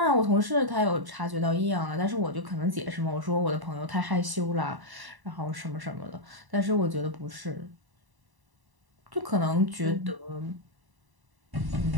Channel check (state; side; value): late; left; 1.0 ms